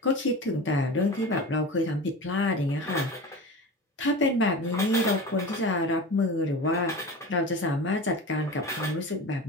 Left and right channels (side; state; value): both; normal; correlation 0.31